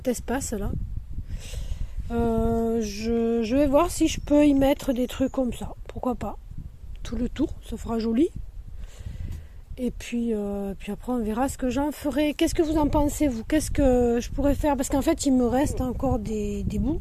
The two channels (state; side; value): identical; both; correlation 1.00